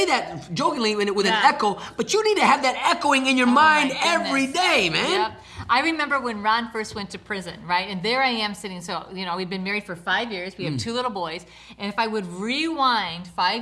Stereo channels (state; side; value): identical; both; correlation 1.00